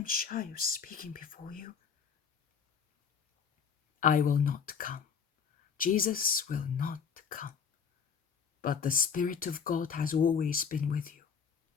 shy of speaking before you. I will not come. Jesus will not come. But the Spirit of God has always been with you.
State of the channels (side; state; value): right; quieter; 6.6 dB